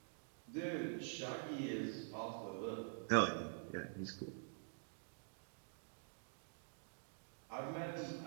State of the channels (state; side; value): silent; left; digital silence